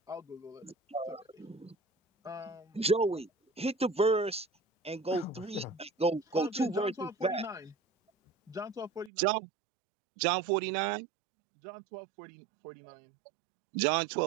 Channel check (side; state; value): left; drops out; at 9.1 s